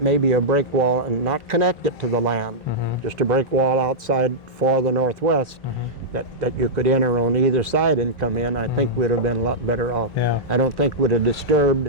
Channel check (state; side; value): normal; both; correlation -0.10